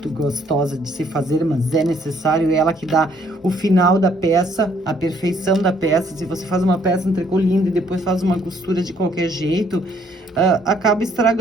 gostosa de se fazer, mas é necessário, é ela que dá o final da peça, a perfeição da peça. Se você faz uma peça, um tricô lindo e depois faz uma costura de qualquer jeito, acaba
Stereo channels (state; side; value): normal; both; correlation 0.65